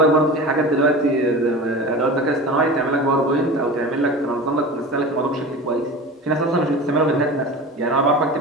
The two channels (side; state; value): both; normal; correlation 0.33